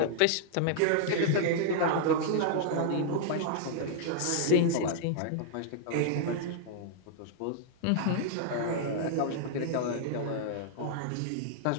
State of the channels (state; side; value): different; both; correlation -0.01